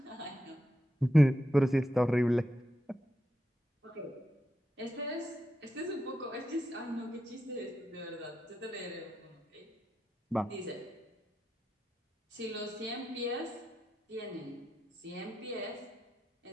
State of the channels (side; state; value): both; normal; correlation 0.86